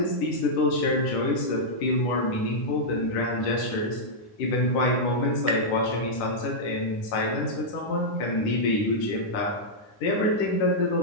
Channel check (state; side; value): late; right; 10 ms